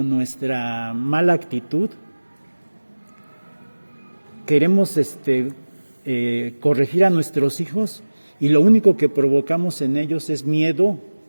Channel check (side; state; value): both; inverted; correlation -1.00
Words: nuestra mala actitud, queremos corregir a nuestros hijos, y lo único que provocamos en ellos es miedo